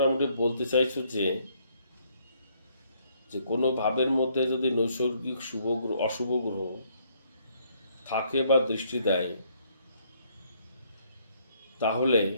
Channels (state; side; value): inverted; both; correlation -0.68